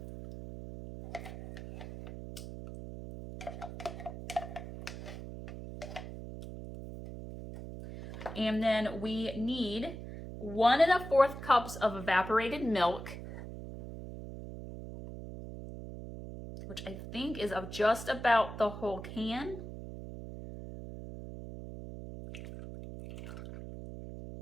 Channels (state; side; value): noise; right; hum, 10 dB below the sound